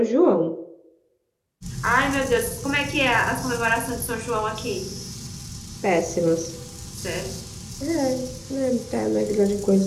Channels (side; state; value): both; identical; correlation 1.00